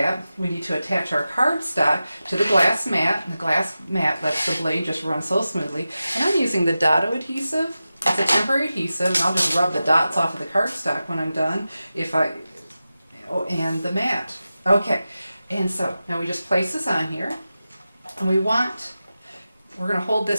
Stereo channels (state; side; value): inverted; both; correlation -0.94